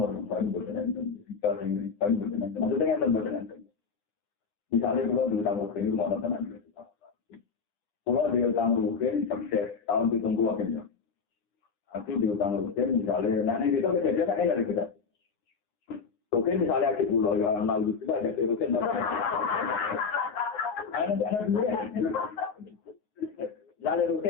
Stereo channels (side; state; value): right; quieter; 5.4 dB